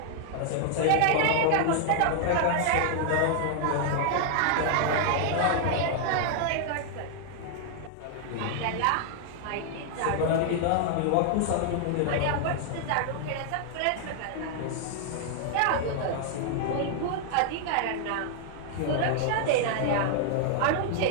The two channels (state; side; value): different; both; correlation 0.00